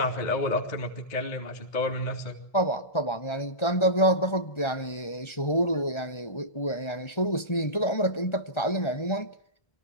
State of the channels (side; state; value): right; late; 1.4 ms